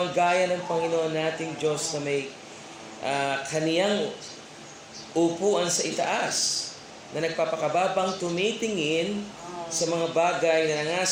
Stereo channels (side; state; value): both; identical; correlation 1.00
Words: gaya ng Panginoon nating Diyos na may kaniyang upuan sa itaas, na nagpapakababang tumitingin sa mga bagay na